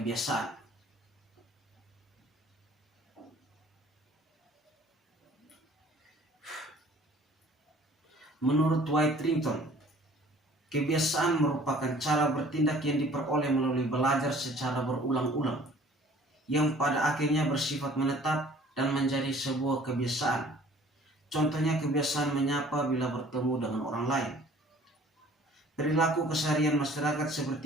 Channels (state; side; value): normal; both; correlation 0.52